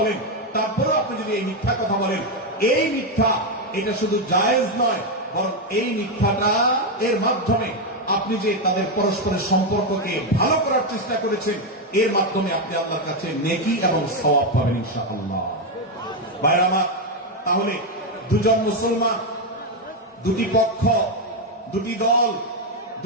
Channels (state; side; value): normal; both; correlation 0.05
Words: তারপরেও আপনি যদি এই মিথ্যা কথা বলেন, এই মিথ্যা এটা শুধু জায়েজ নয়, বরং এই মিথ্যাটা এর মাধ্যমে আপনি যে তাদের পরস্পরের সম্পর্ককে ভালো করার চেষ্টা করেছেন, এর মাধ্যমে আপনি আল্লাহর কাছে নেকি এবং সওয়াব পাবেন ইনশাআল্লাহ। ভাইরা আমার, তাহলে দুজন মুসলমান, দুটি পক্ষ, দুটি দল,